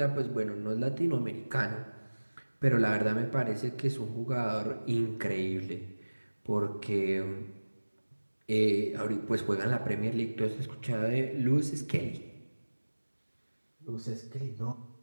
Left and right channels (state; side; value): inverted; both; correlation -1.00